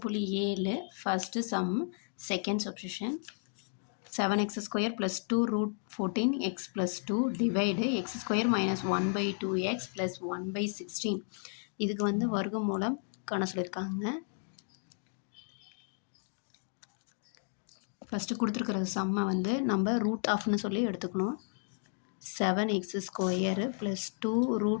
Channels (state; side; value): silent; right; 56 dB below the other